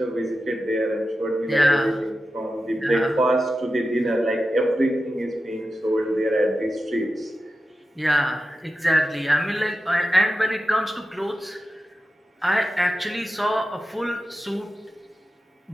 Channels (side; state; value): both; normal; correlation 0.92